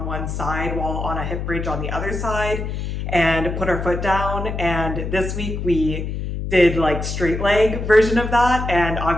one side while on a hip bridge on the other side and put our foot down. And this week we did like straight leg version of that, and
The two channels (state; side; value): noise; left; hum, 4 dB below the sound